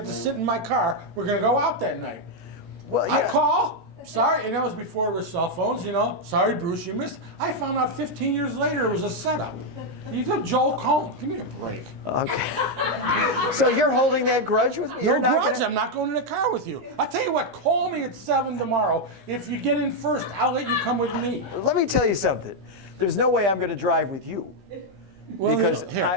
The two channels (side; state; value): left; late; 16 ms